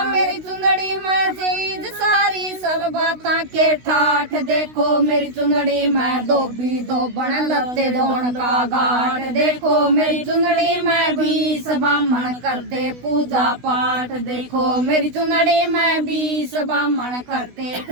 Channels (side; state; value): left; late; 16 ms